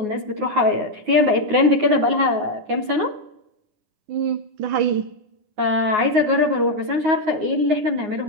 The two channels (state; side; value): late; left; 9.5 ms